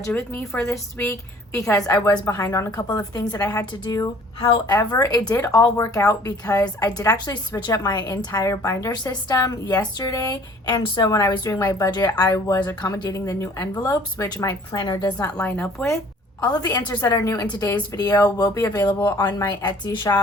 with me for this week because I was behind on a couple of things that I had to do. However, it did all work out because I did actually switch up my entire binder system yesterday, and so when I was doing my budget I was accommodating the new envelopes, which my planner does not line up with. All of the answers that are new in today's video will be available on my Etsy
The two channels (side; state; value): both; normal; correlation 0.53